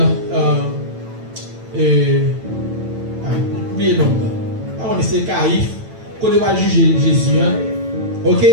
Oubliez le nom. On essaie Caïphe, côté va juger Jésus. Ok?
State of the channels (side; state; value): left; late; 9.0 ms